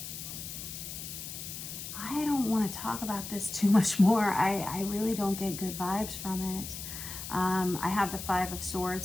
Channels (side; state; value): left; noise; hiss, 8 dB below the sound